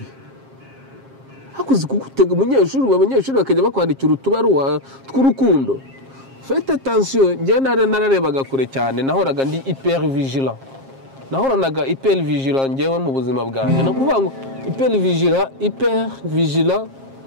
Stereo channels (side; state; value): left; late; 7.5 ms